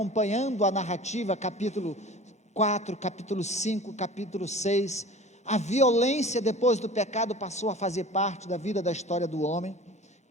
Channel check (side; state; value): both; normal; correlation 0.41